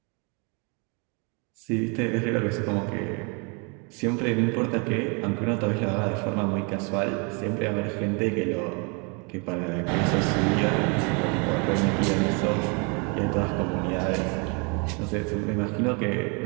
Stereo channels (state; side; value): quieter; left; 33.5 dB